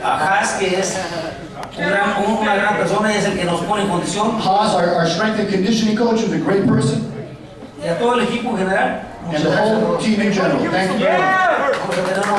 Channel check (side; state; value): both; identical; correlation 1.00